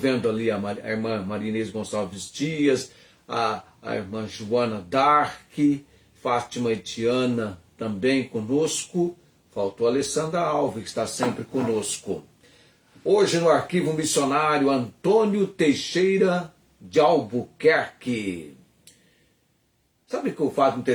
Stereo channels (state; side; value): identical; both; correlation 1.00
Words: ali a irmã Marinês Gonçalves Dias, a irmã Joana Dark, Fátima Etiana também conosco. Faltou a Alessandra Alves, que está sempre conosco. Hoje no Arquivo Missionário Antônio Teixeira de Albuquerque. Sabe que o fato